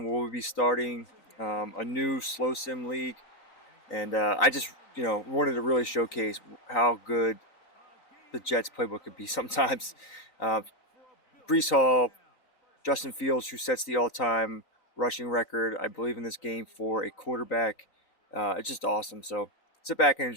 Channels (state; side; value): late; right; 3.9 ms